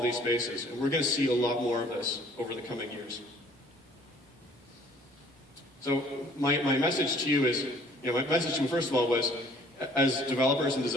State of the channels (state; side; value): normal; both; correlation 0.56